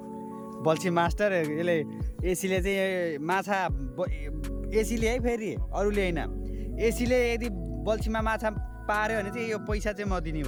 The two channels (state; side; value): identical; both; correlation 1.00